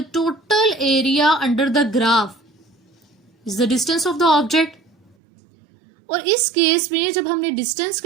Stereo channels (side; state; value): left; drops out; at 5.2 s